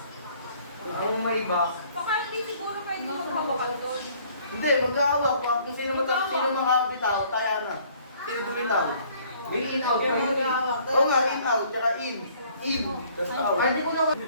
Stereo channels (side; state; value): both; inverted; correlation -0.58